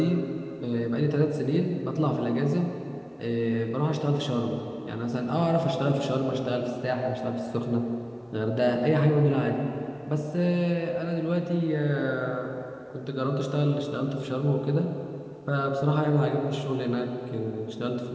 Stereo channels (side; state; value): both; identical; correlation 1.00